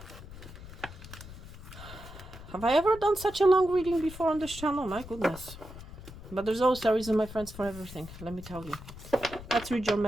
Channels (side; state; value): left; noise; rumble, 14 dB below the sound